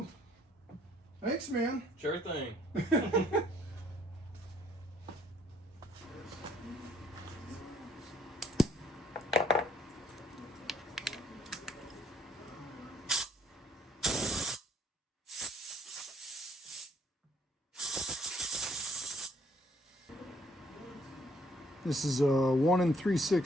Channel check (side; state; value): both; normal; correlation 0.65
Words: Thanks, man. Sure thing. This is a 1